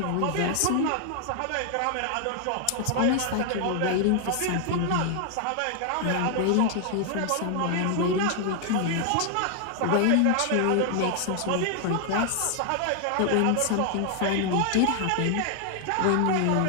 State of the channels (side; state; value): both; different; correlation 0.00